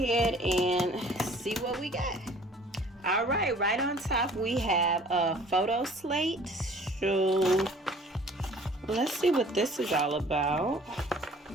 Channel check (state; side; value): normal; both; correlation 0.52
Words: and see what we got. All right, right on top we have a photo slate. So let's see what this is all about.